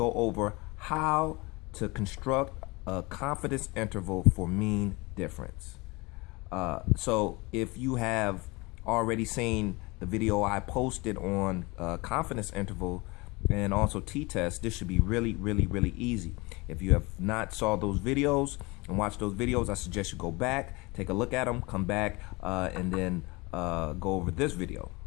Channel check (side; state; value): right; quieter; 24.9 dB